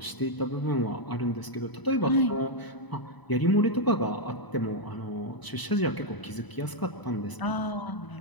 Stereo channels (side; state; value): right; late; 1.0 ms